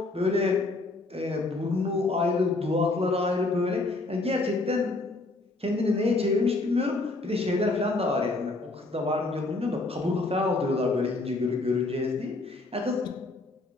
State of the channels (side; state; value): right; quieter; 3.2 dB